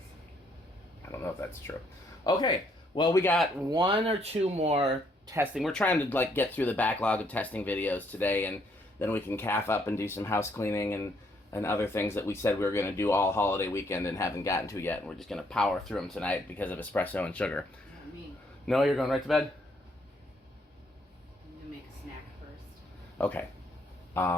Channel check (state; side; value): normal; both; correlation 0.69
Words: I don't know if that's true. Okay, well, we got 1 or 2 more testing. We're trying to like get through the backlog of testing videos today, and then we can calf up and do some house cleaning and other things that we said we were going to do all holiday weekend and haven't gotten to yet. And we're just going to power through them tonight because of espresso and sugar. Not me. No, you're going right to bed? I'm going to make a snack first. Okay.